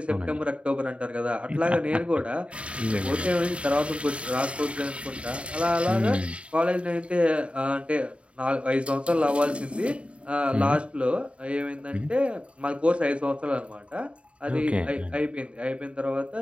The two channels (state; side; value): late; left; 0.061 ms